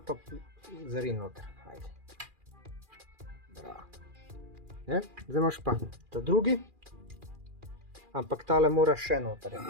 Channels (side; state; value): left; late; 2.4 ms